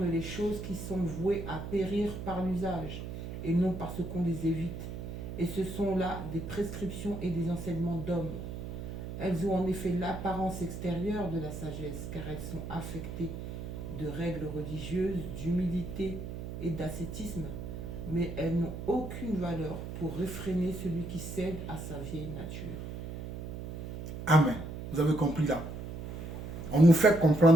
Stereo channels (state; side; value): noise; right; hum, 7 dB below the sound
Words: les choses qui sont vouées à périr par l'usage et non parce qu'on les évite. Et ce sont là des prescriptions et des enseignements d'hommes. Elles ont en effet l'apparence extérieure de la sagesse, car elles sont affectées de règles religieuses, d'humilité et d'ascétisme, mais elles n'ont aucune valeur pour réfréner celui qui cède à sa vieille nature. Amen. Vous avez compris là. On nous fait